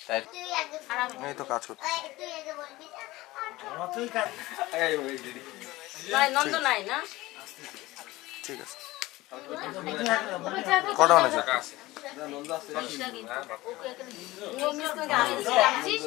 এই তো কাজ করতে নন্দ নাই না, ঠিক আছে। কটা বানাচ্ছে?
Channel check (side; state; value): right; quieter; 18.9 dB